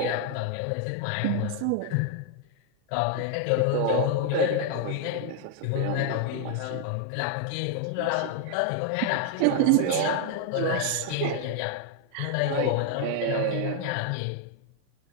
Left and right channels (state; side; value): different; both; correlation 0.00